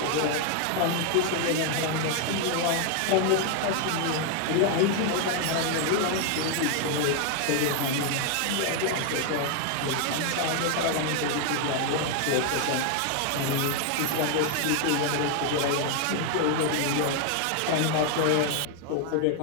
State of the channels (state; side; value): different; both; correlation 0.00